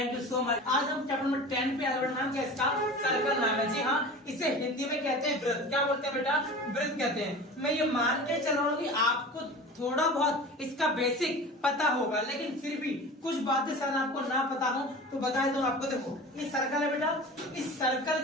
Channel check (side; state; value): both; normal; correlation 0.36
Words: you so much. आज हम चैप्टर नंबर 10 पे आगे बढ़ना, क्या इसका सर्कल नाम है। जी हाँ, इसे हिंदी में कहते हैं वृत्त। क्या बोलते हैं बेटा, वृत्त कहते हैं। मैं ये मान के चल रहा हूँ कि आपको थोड़ा बहुत इसका बेसिक पता होगा, लेकिन फिर भी कुछ बातें शायद आपको ना पता हो तो बता दूं आपको। देखो ये सर्कल है बेटा, इस सर्कल